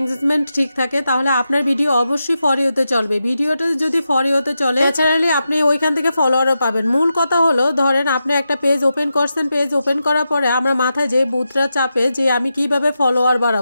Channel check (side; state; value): both; inverted; correlation -0.89